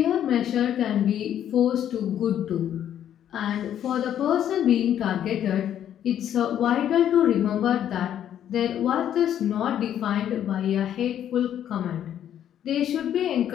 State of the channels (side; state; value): right; quieter; 10.3 dB